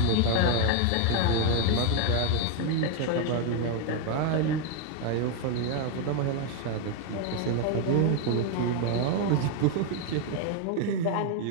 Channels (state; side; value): different; both; correlation 0.01